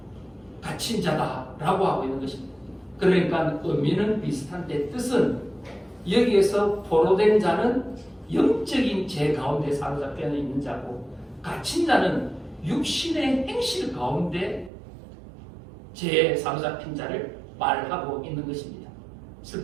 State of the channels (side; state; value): left; drops out; at 14.7 s